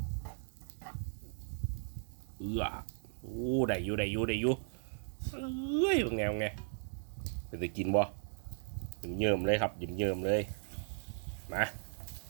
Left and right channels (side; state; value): left; silent; digital silence